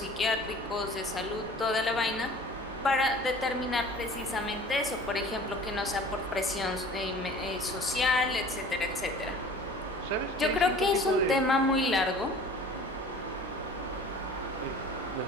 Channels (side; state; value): both; normal; correlation 0.45